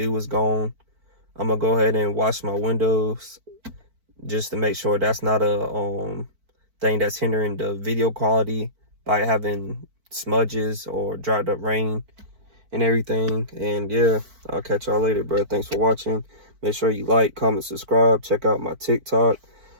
is gone. I'm gonna go ahead and wash my windows just to make sure that's not a thing that's hindering the video quality by having smudges or dried up rain and everything. And yeah, I'll catch y'all later, bro. Thanks for watching. Make sure you like, comment, subscribe. Check out my TikTok.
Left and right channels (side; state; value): left; late; 4.5 ms